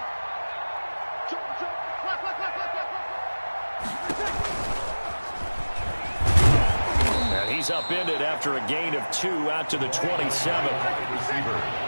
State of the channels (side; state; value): both; inverted; correlation -1.00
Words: He's upended after a gain of 2 out to the 27. Receiver.